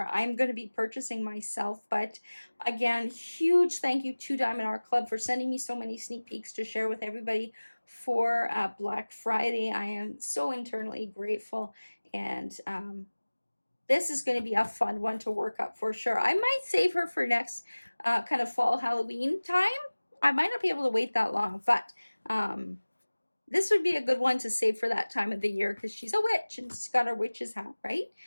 I'm going to be purchasing myself. But again, huge thank you to Diamond Art Club for sending me so many sneak peeks to share with everybody for Black Friday. I am so internally grateful, and this is going to be a fun one to work up for sure. I might save her for next kind of fall Halloween time. I might not be able to wait that long, but this would be a good one to save for that time of the year because she's a witch and she's got her witch's hat, right?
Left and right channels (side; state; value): both; inverted; correlation -1.00